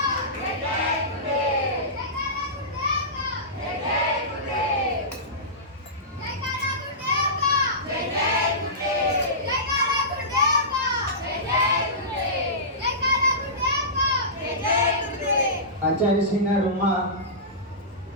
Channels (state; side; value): normal; both; correlation -0.19